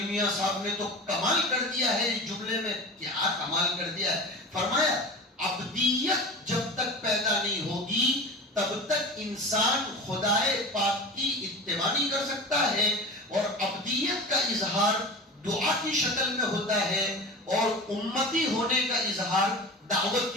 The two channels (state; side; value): normal; both; correlation 0.32